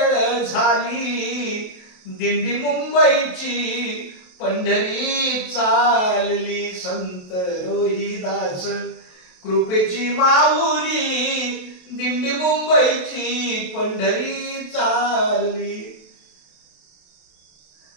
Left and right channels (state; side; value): late; right; 28 ms